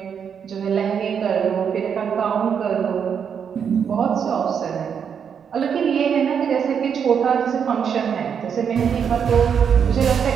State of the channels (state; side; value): quieter; left; 7.3 dB